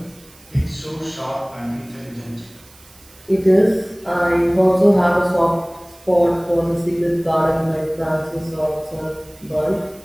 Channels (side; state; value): right; noise; hiss, 26 dB below the sound